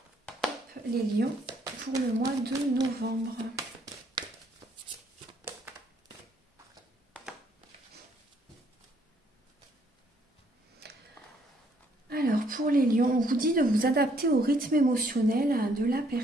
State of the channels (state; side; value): normal; both; correlation 0.67